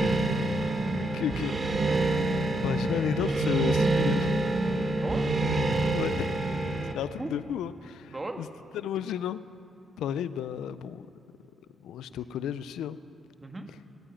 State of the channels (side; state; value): both; normal; correlation 0.75